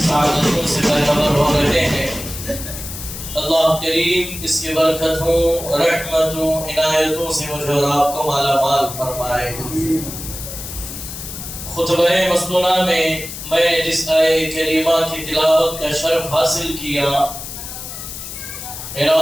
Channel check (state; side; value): noise; left; hiss, 9 dB below the sound